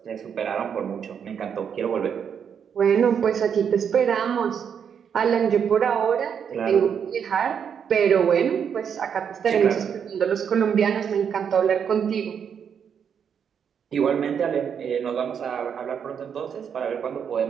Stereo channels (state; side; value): quieter; left; 7.6 dB